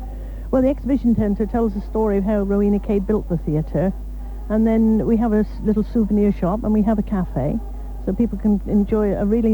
Well, the exhibition centre tells the story of how Rowena Cade built the theatre, and then we have a little souvenir shop, and we have a cafe, so people can enjoy a really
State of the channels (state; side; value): identical; both; correlation 1.00